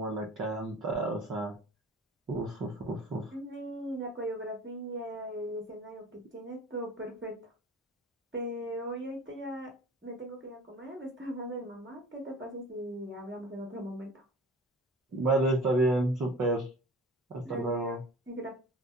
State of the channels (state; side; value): normal; both; correlation 0.42